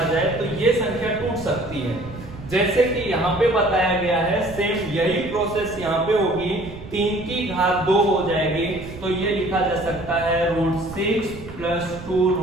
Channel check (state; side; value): noise; right; rumble, 15 dB below the sound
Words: जाए तो ये संख्या टूट सकती है। जैसे कि यहाँ पे बताया गया है, सेम यही प्रोसेस यहाँ पे होगी, 3 की घात 2 हो जाएगी, तो ये लिखा जा सकता है √6 प्लस